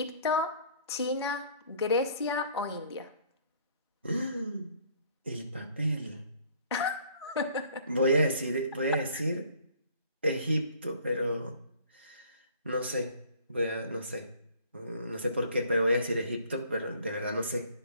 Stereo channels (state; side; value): inverted; both; correlation -0.56